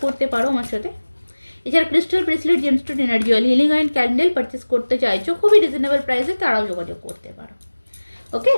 করতে পারো আমার সাথে। এছাড়া crystal bracelet, gemstone, energy oil, healing oil, candle purchase করতে চাইছো খুবই রিজনেবল প্রাইসে, তারাও যোগাযোগ করতে পারো। ওকে,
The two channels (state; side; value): inverted; both; correlation -1.00